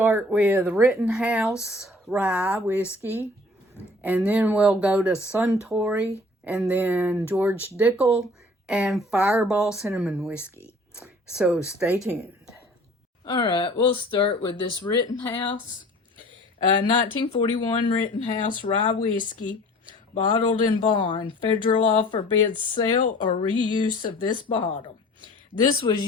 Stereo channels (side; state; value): both; normal; correlation 0.48